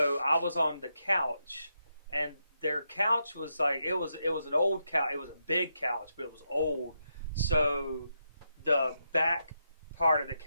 I was on the couch, and their couch was like, it was an old couch. It was a big couch, but it was old. So the back part of the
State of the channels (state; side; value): inverted; both; correlation -0.83